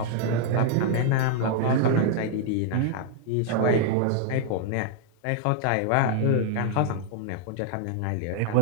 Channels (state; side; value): different; both; correlation -0.01